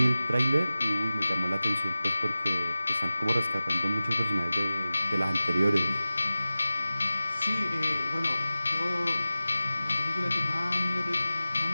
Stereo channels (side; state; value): both; inverted; correlation -0.95